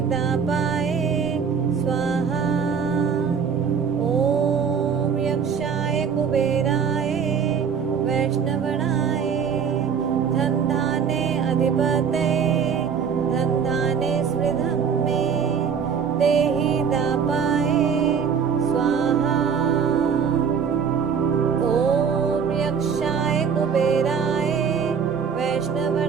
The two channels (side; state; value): left; quieter; 6.8 dB